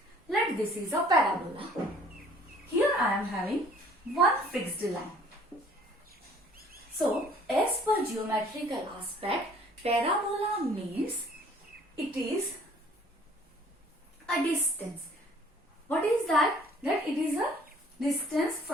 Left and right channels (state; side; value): normal; both; correlation 0.55